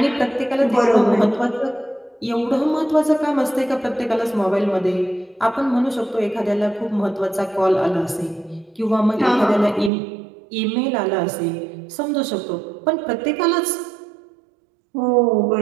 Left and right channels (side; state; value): left; drops out; at 9.9 s